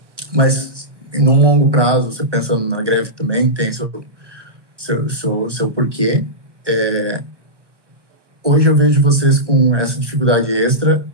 Mas, num longo prazo, você pensando na greve também, tem seu porquê. Hoje eu vejo vocês com essa dificuldade extra.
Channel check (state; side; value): late; left; 1.0 ms